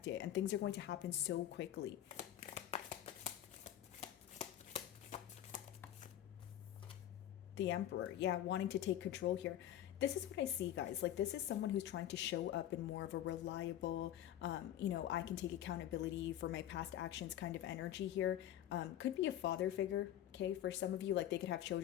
it. And things are going to happen so quickly. The Emperor. Yeah, wanting to take control here. This is what I see, guys. Like, this is someone who's trying to show up in more of a reliable, you know, I can take accountability for my past actions kind of energy here. Could be a father figure, okay? For some of you, like, they could have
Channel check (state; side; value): quieter; right; 11.9 dB